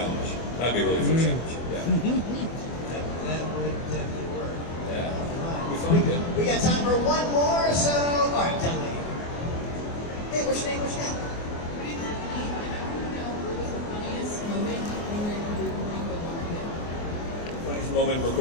That'd be a really fun challenge. Yeah. That would definitely work. Yeah. Good. We got time for one more, so all right, tell me. Hey, what's your name? What's your name? Funniest moment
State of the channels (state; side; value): late; right; 24 ms